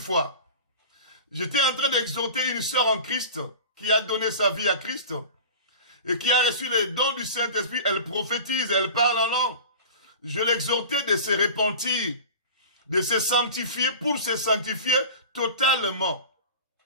j'étais en train d'exhorter une sœur en Christ qui a donné sa vie à Christ et qui a reçu les dons du Saint-Esprit. Elle prophétise, elle parle en langue. Je l'exhortais de se repentir, de se sanctifier pour se sanctifier totalement.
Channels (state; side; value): inverted; both; correlation -0.36